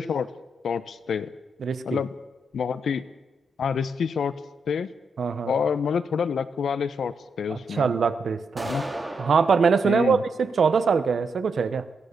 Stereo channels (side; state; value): both; normal; correlation 0.80